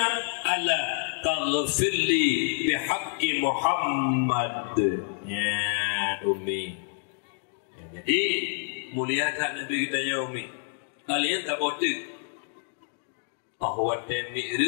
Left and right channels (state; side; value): silent; right; 59 dB below the other